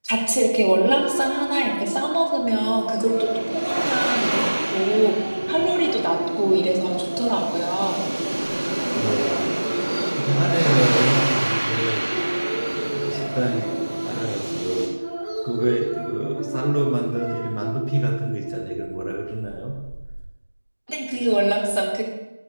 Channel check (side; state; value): both; inverted; correlation -1.00